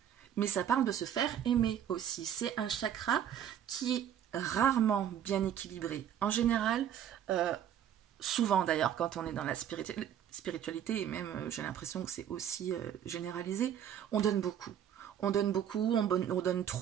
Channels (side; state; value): left; quieter; 9.8 dB